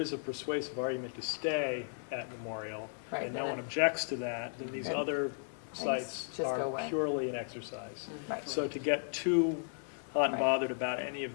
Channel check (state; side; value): silent; right; 54 dB below the other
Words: a persuasive argument to stay at Memorial, Right, and then no one objects to that, then these Right. other Things sites just go are away. purely an exercise. Right. So to get too hot and Right. bothered about any of